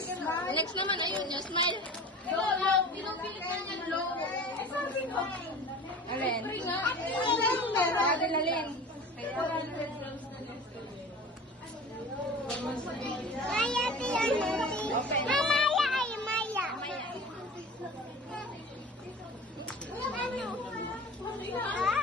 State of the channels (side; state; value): both; normal; correlation 0.38